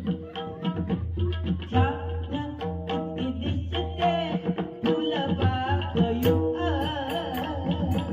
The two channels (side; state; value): both; identical; correlation 1.00